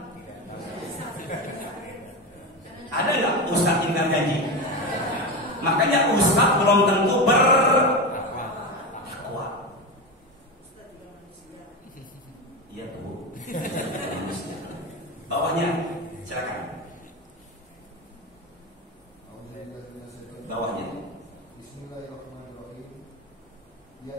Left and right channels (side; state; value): both; normal; correlation 0.19